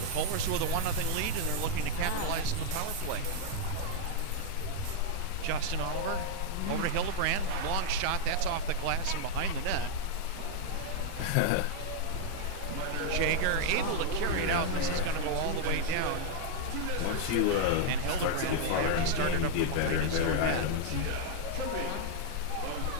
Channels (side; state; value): both; different; correlation 0.00